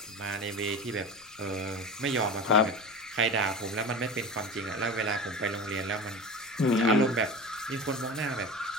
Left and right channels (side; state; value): left; noise; rumble, 28 dB below the sound